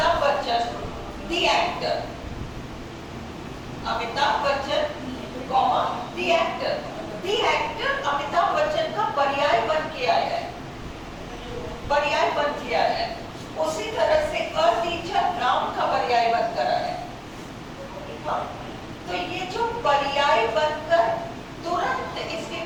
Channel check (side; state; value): both; identical; correlation 1.00